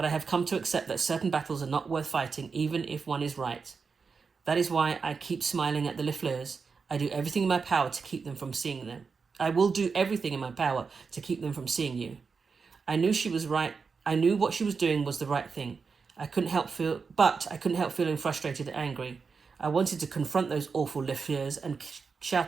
I have come to accept that certain battles are not worth fighting, even if one is right. That is why I keep smiling at the Lafleurs. I do everything in my power to keep them from seeing them. I will do everything in my power to keep them from seeing you. I knew she was right. I knew what she was doing was the right thing. I couldn't help feeling frustrated and angry. I wanted to confront those awful Lafleurs and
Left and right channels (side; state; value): left; quieter; 5.1 dB